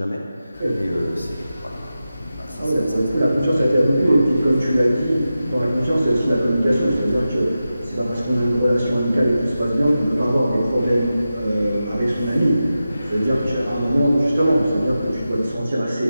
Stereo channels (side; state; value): both; inverted; correlation -0.92